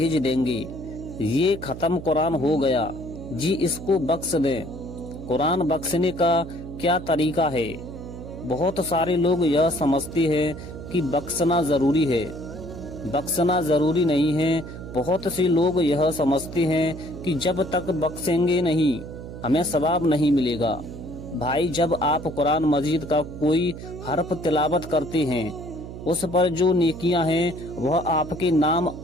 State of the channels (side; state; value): right; noise; hum, 11 dB below the sound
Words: دیں گے، یہ ختم قرآن ہو گیا جی، اس کو بخش دیں۔ قرآن بخشنے کا کیا طریقہ ہے؟ بہت سارے لوگ یہ سمجھتے ہیں کہ بخشنا ضروری ہے، بخشنا ضروری نہیں ہے۔ بہت سے لوگ یہ سمجھتے ہیں کہ جب تک بخشیں گے نہیں ہمیں ثواب نہیں ملے گا۔ بھائی، جب آپ قرآن مجید کا کوئی حرف تلاوت کرتے ہیں، اس پر جو نیکیاں ہیں وہ آپ کے نام